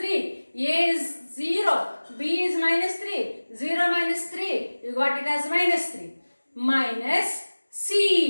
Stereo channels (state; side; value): inverted; both; correlation -1.00